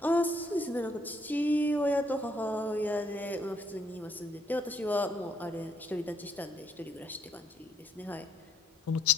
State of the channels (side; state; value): both; normal; correlation 0.71